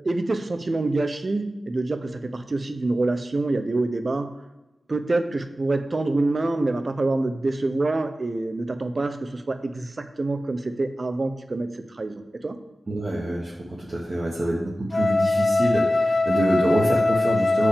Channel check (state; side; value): normal; both; correlation 0.95